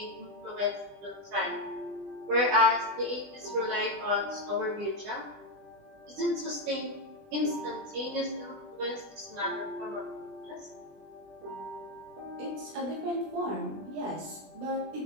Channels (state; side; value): late; left; 20 ms